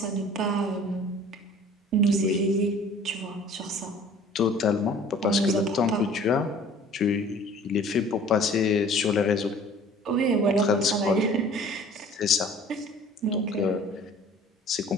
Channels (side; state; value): both; normal; correlation 0.49